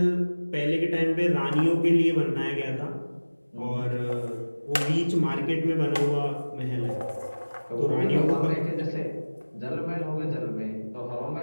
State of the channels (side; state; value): both; inverted; correlation -1.00